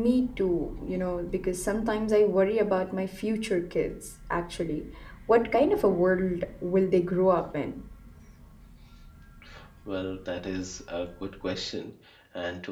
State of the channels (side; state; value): both; identical; correlation 1.00